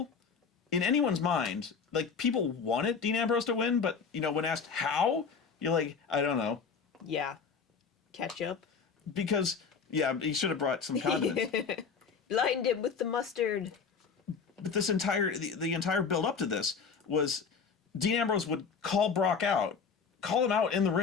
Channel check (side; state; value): right; quieter; 5.7 dB